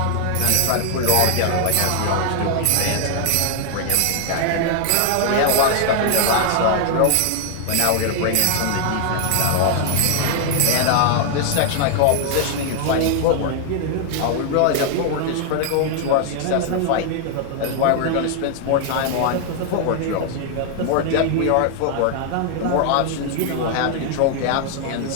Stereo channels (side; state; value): both; different; correlation 0.00